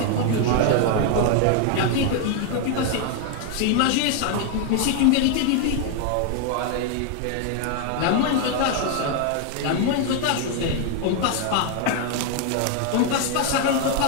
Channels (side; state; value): both; different; correlation 0.00